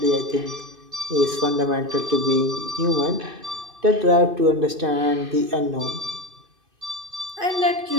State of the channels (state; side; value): late; left; 2.5 ms